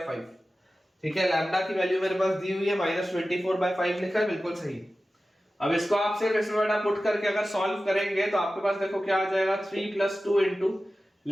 ठीक है। लैम्डा की वैल्यू मेरे पास दी हुई है -24/5 लिखा है, बिल्कुल सही। अब इसको आप सिर्फ इसमें बेटा पुट करके अगर सॉल्व करेंगे तो आपके पास देखो क्या आ जाएगा, 3 + 2 into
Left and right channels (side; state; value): both; normal; correlation 0.95